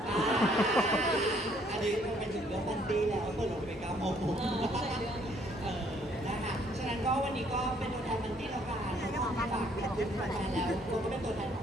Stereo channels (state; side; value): normal; both; correlation 0.64